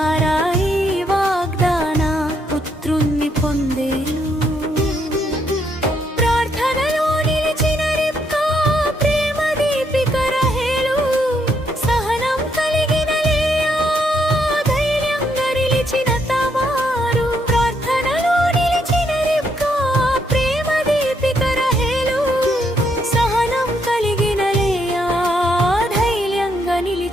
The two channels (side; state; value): both; normal; correlation 0.74